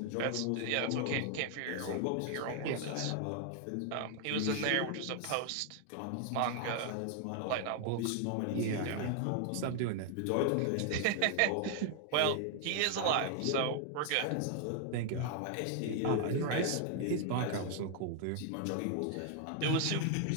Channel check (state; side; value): different; both; correlation 0.00